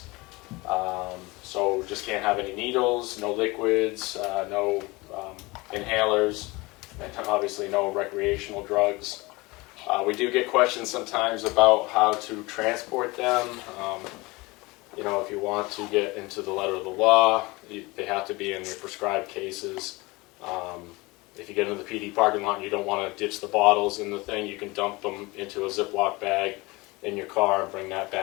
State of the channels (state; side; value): quieter; right; 23.5 dB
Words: So just can't have any needles, no liquids, no inhalers, and obviously no recreational drugs. We do get questions sometimes about how to transport them. You know, if you want to get into the letter of the law, they have to be in your prescribed cases. If you get into the PD parking lot and you don't want to ditch the bottles in the thing, you can dump them into a Ziploc bag in your car and bring that